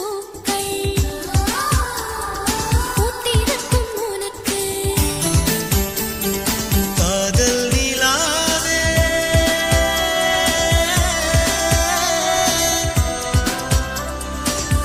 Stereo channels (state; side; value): identical; both; correlation 1.00